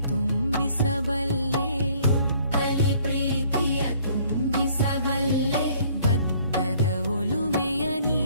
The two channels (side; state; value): both; inverted; correlation -0.59